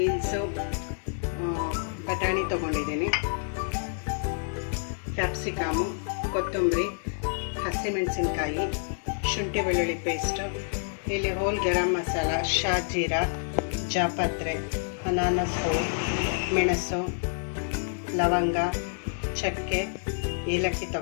ಬಟಾಣಿ ತೊಗೊಂಡಿದ್ದೀನಿ, ಕ್ಯಾಪ್ಸಿಕಮು, ಕೊತ್ತಂಬರಿ, ಹಸಿಮೆಣಸಿನ್ಕಾಯಿ, ಶುಂಠಿ ಬೆಳ್ಳುಳ್ಳಿ ಪೇಸ್ಟು, ಇಲ್ಲಿ ಹೋಲ್ ಗರಂ ಮಸಾಲ, ಶಾಜೀರಾ, ಜಾಪತ್ರೆ, ಅನಾನಸು, ಮೆಣಸು, ಲವಂಗ, ಚಕ್ಕೆ, ಏಲಕ್ಕಿ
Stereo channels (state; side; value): silent; right; digital silence